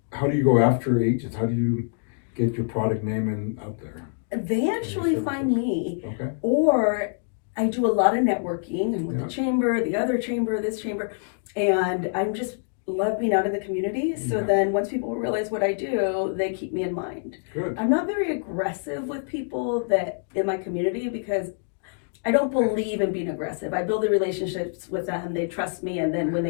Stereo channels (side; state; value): right; silent; digital silence